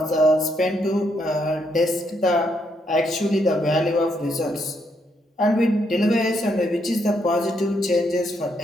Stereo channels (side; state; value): both; normal; correlation 0.76